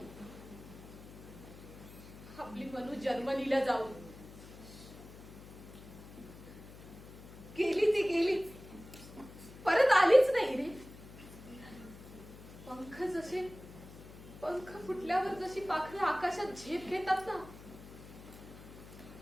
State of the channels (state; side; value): noise; left; hum, 16 dB below the sound